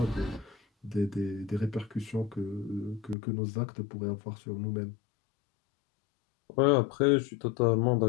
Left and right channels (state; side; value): drops out; right; at 3.2 s